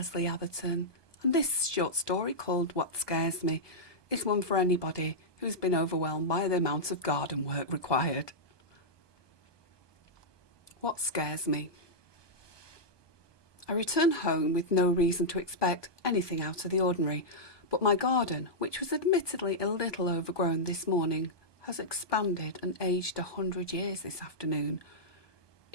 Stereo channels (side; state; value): right; late; 1.2 ms